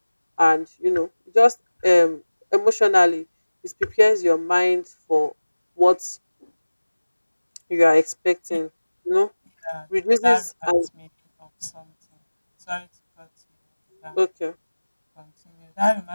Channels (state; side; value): inverted; both; correlation -1.00